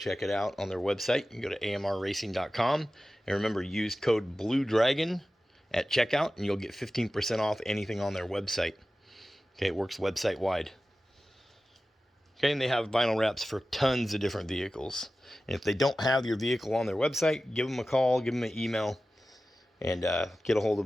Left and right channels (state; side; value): normal; both; correlation 0.95